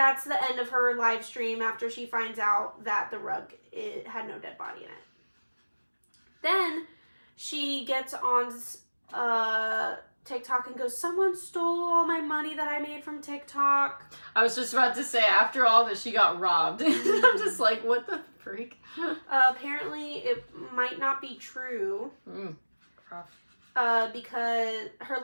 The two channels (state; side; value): inverted; both; correlation -1.00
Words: the end of her live stream after she finds out that the rug had no dead body in it. Then she gets on TikTok and goes, someone stole all my money that I made from TikTok. I was just about to say, after all that, she got robbed. I'm just like, what the freak? Apparently, it might not be true. Rough. Because her